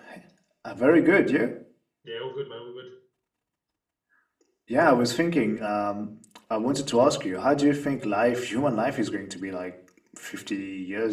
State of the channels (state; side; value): identical; both; correlation 1.00